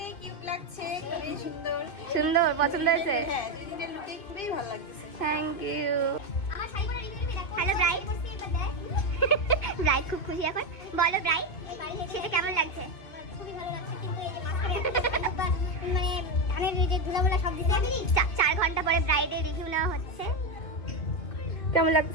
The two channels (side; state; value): right; late; 2.5 ms